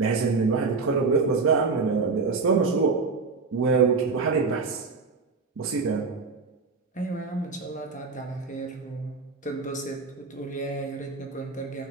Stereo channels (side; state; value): left; quieter; 4.4 dB